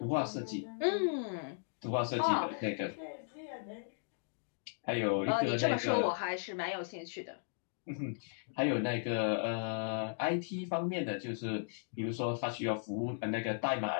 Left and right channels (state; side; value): silent; right; digital silence